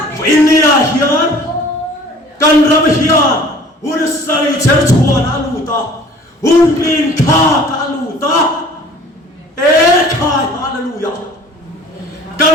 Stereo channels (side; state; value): both; normal; correlation 0.49